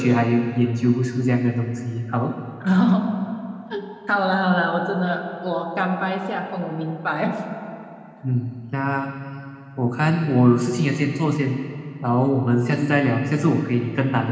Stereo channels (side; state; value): both; identical; correlation 1.00